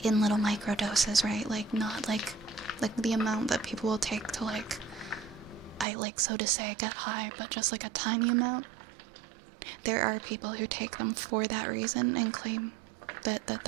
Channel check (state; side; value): drops out; left; at 5.9 s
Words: in little micro doses, right? Like not like the amount that people will take to like, I like so to say get high, but just like a tiny amount. There are people who take them for that reason and claim that